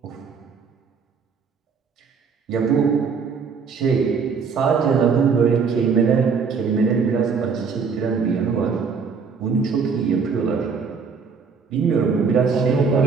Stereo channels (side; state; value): left; quieter; 5.5 dB